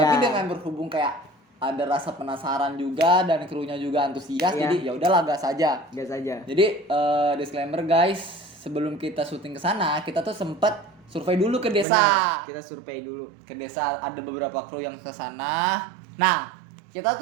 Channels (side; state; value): left; drops out; at 11.9 s